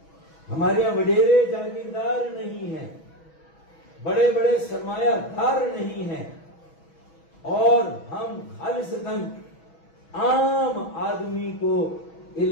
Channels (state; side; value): late; right; 6.2 ms